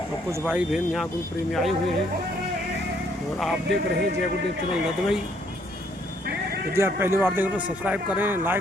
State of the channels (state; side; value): normal; both; correlation 0.67